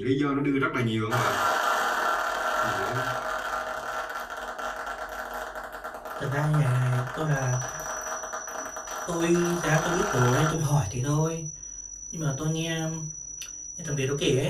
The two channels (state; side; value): identical; both; correlation 1.00